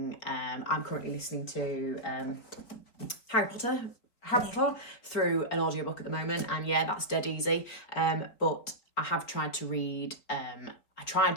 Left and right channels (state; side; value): late; right; 4.4 ms